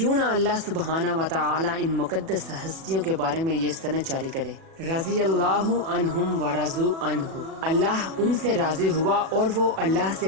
نہ اللہ سبحانہ و تعالی ان مقدس ہستیوں کے بارے میں یہ سند جاری کرے، رضی اللہ عنہم ورضوا عنہ، اللہ ان سے راضی ہوا اور وہ اللہ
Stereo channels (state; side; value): late; left; 37 ms